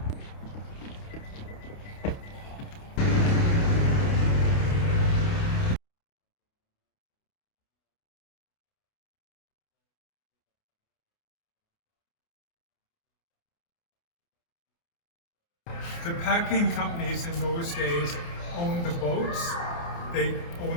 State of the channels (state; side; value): late; right; 29 ms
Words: The packing companies in those days owned the boats, they